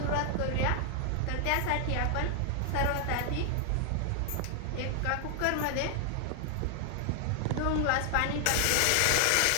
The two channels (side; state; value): both; different; correlation 0.00